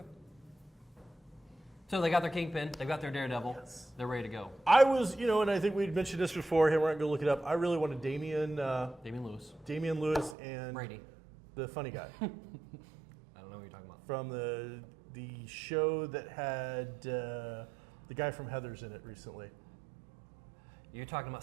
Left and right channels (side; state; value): left; drops out; at 10.4 s